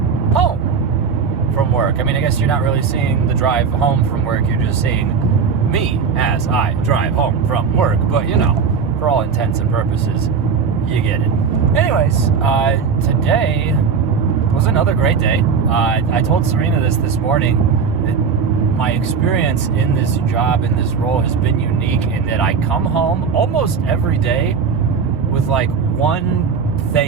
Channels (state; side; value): quieter; left; 5.9 dB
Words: from work. I mean, I guess you're not really seeing the drive home from work, you're just seeing me as I drive home from work, but you know, for all intents and purposes, you get it. Anyways, today was another great day. I told Serena this morning that my experience in this job, in this role, has been unique in that I come home almost every day with like one